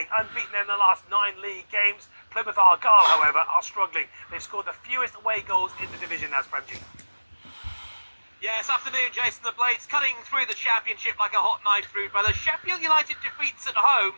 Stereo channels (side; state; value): both; inverted; correlation -1.00